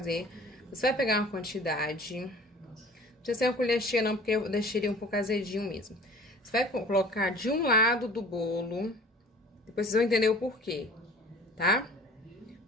Você vai pegar uma quantidade, não precisa ser uma colher cheia não, porque eu deixei ele um pouco azedinho mesmo. Você vai colocar de um lado do bolo, depois vocês vão entender o porquê, tá?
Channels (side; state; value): both; normal; correlation 0.46